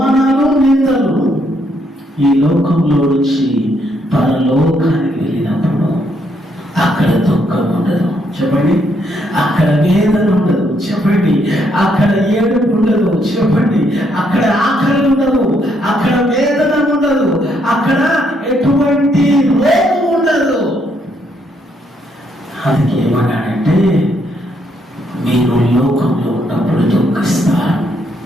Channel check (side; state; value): both; normal; correlation 0.73